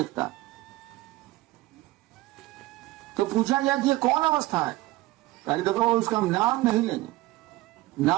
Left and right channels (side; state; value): left; quieter; 18.3 dB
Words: तो पूछा गया कि ये कौन अवस्था है? कहीं देखो उसका हम नाम नहीं लेंगे,